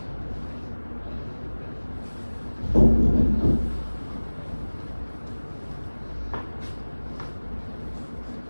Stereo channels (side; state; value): both; inverted; correlation -1.00